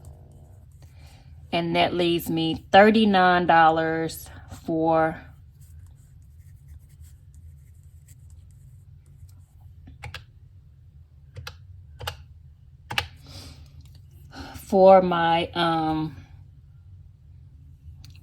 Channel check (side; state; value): both; identical; correlation 1.00